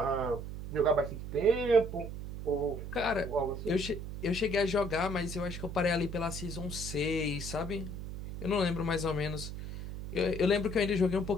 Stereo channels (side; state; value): right; noise; hum, 8 dB below the sound